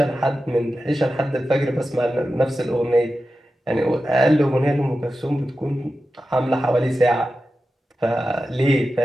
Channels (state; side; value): normal; both; correlation 0.92